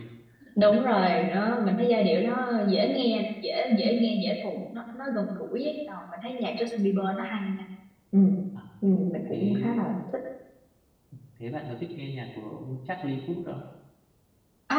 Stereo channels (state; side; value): identical; both; correlation 1.00